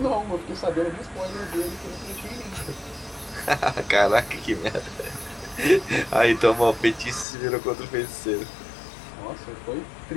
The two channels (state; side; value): drops out; right; at 7.2 s